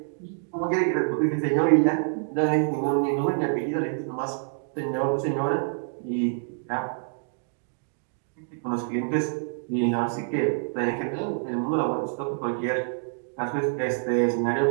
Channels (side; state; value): left; silent; digital silence